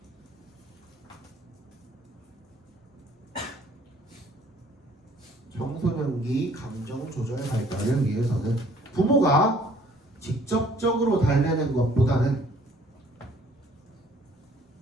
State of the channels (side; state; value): both; normal; correlation 0.58